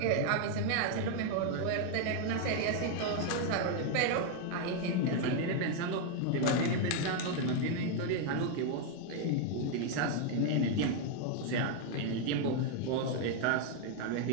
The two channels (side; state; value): both; different; correlation 0.00